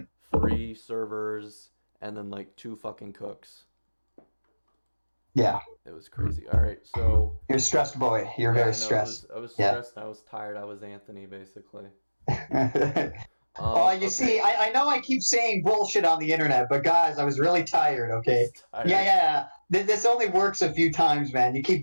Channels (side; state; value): both; inverted; correlation -1.00